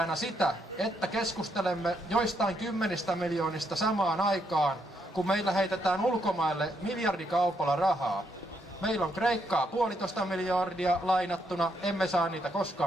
sitä, että keskustelemme joistain 10 miljoonista samaan aikaan, kun meillä heitetään ulkomaille miljardikaupalla rahaa. Meillä on Kreikkaa 1,5 miljardia lainattuna, emme saa niitä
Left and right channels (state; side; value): normal; both; correlation 0.76